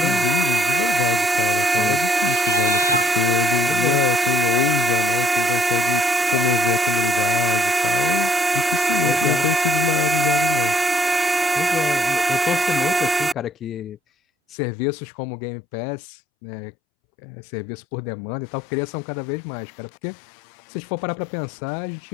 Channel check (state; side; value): drops out; right; at 14.6 s